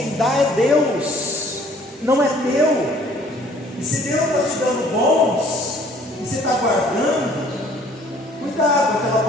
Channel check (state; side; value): normal; both; correlation 0.56